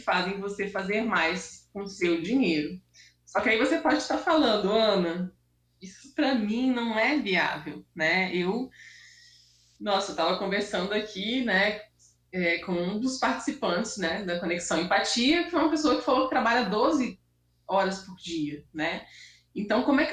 você fazer mais com o seu dinheiro. Só que aí você pode estar falando, Ana, isso para mim não é viável, né? Eu estava conversando aqui, né, com um dos participantes, né, da Conexão Empatia, que foi uma pessoa que falou que trabalha 12 horas por dia, né? Então, como é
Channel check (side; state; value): both; identical; correlation 1.00